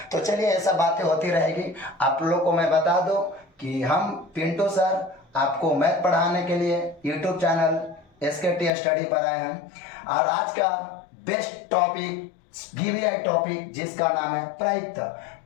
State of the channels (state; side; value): drops out; right; at 8.7 s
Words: तो चलिए, ऐसा बातें होती रहेगी। आप लोग को मैं बता दूं कि हम पिंटू सर आपको मैथ पढ़ाने के लिए यूट्यूब चैनल SKT स्टडी पर आए हैं, और आज का बेस्ट टॉपिक VVI टॉपिक जिसका नाम है प्रायिकता।